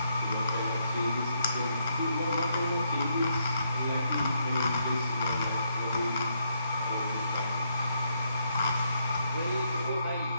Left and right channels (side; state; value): both; inverted; correlation -0.76